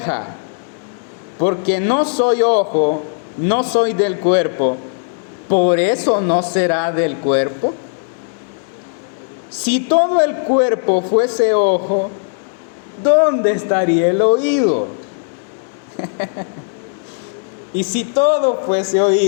porque no soy ojo, no soy del cuerpo, ¿por eso no será del cuerpo? Si todo el cuerpo fuese ojo, ¿dónde estaría el oído? Y si todo fuese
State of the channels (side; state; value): right; silent; 64 dB below the other